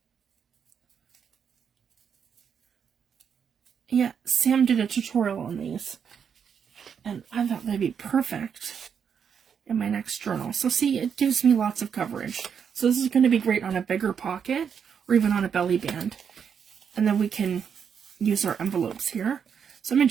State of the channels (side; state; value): left; quieter; 7.3 dB